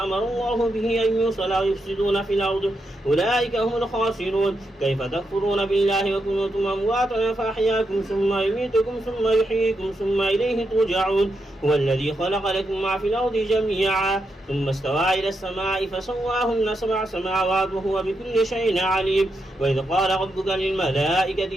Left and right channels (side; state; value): both; normal; correlation 0.84